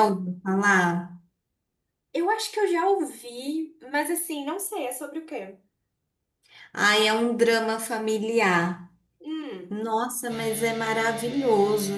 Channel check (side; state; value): both; identical; correlation 1.00